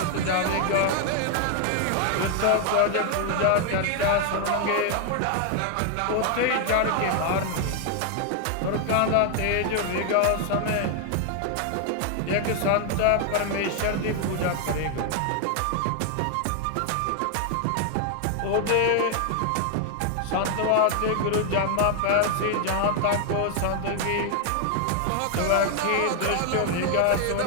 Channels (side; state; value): both; different; correlation 0.00